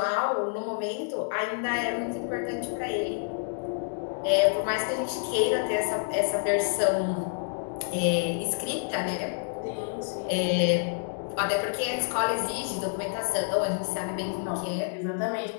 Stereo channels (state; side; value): silent; right; digital silence